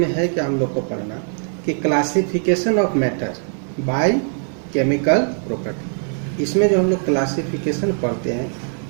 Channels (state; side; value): silent; left; 57 dB below the other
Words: है कि हम लोग को पढ़ना कि classification of matter by chemical property. इसमें जो हम लोग क्लासिफिकेशन पढ़ते हैं